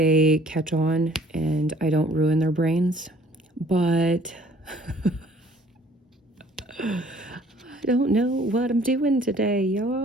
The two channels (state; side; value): normal; both; correlation 0.56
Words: catch on and I don't ruin their brains. But I don't know what I'm doing today,